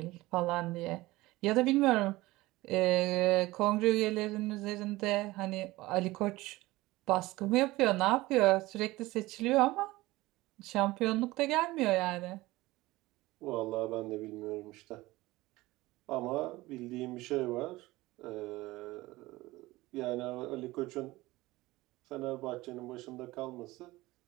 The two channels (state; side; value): quieter; left; 19.3 dB